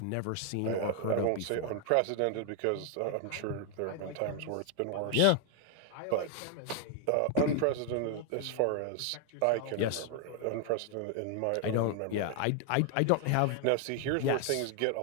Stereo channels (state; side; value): different; both; correlation 0.00